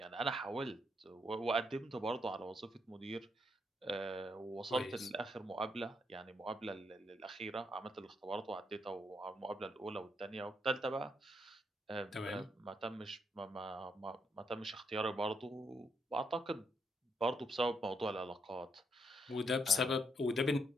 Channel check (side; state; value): both; normal; correlation 0.77